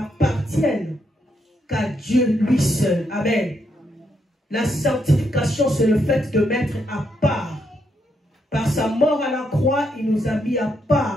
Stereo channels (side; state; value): both; normal; correlation 0.78